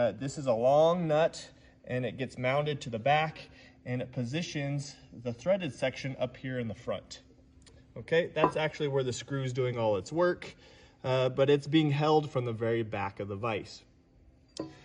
is a long nut and it gets mounted to the back and it positions the threaded section up here in the front. Okay, that's actually where the screw is doing all its work, but it's being held from the very back of the vise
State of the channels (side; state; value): both; identical; correlation 1.00